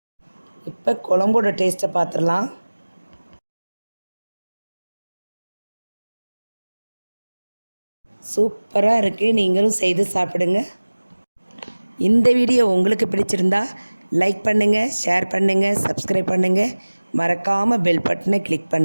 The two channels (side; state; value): both; inverted; correlation -1.00